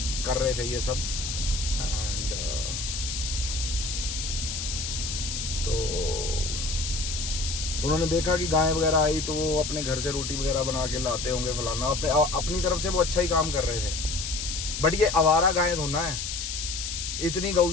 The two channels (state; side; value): noise; left; hiss, 4 dB below the sound